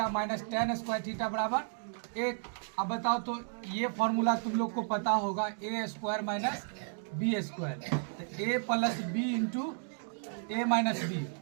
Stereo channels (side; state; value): left; silent; digital silence